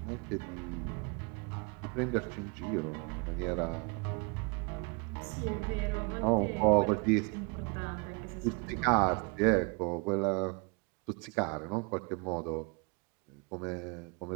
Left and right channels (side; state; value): left; quieter; 31.7 dB